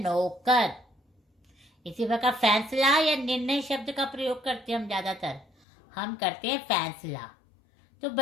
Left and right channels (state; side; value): drops out; right; at 5.5 s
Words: इसी प्रकार फैसला या निर्णय शब्द का प्रयोग करते हैं हम ज्यादातर, हम करते हैं फैसला। तो